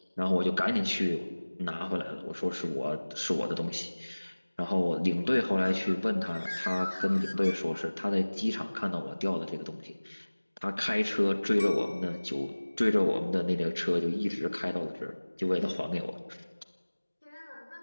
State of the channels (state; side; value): inverted; both; correlation -1.00